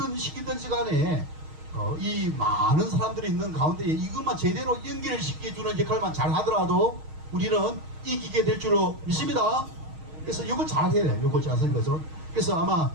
시기든지 간에 이 많은 사람들이 있는 가운데 이것만 제대로 연결시켜주는 역할만 잘 하더라도 우리는 이기게 될 줄로 믿습니다. 그래서 이거 잘 해야 돼요. 이거 잘 쓰는 그래서 아마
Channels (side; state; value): left; late; 6.4 ms